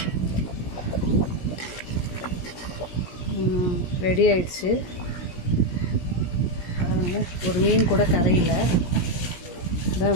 ரெடி ஆயிடுச்சு. ஒரு மீன் கூட கரையில் இதான்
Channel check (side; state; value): right; late; 17 ms